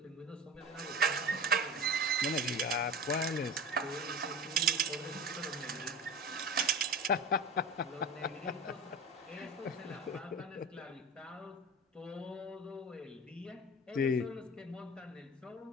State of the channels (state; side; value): normal; both; correlation 0.32